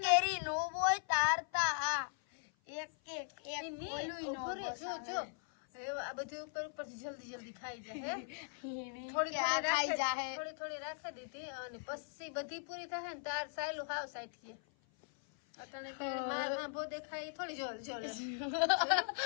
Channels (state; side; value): silent; right; 52 dB below the other